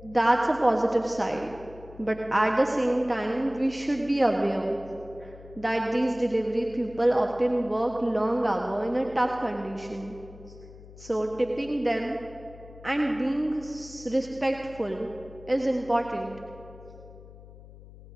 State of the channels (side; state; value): left; noise; hum, 19 dB below the sound